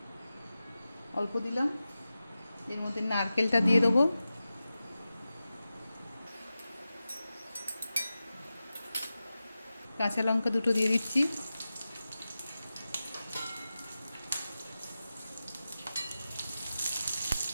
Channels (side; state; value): both; inverted; correlation -0.93